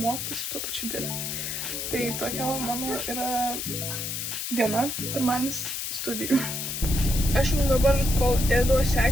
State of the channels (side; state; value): left; noise; hiss, 4 dB below the sound